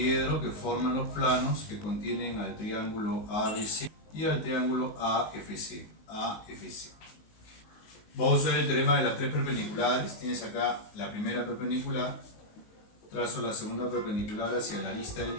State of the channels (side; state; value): right; late; 19 ms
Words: que forman los planos que contienen al triángulo ABC y al triángulo AFC. Vamos a usar el teorema de las tres perpendiculares. Tienes acá la primera perpendicular, trazo la segunda perpendicular hacia la arista del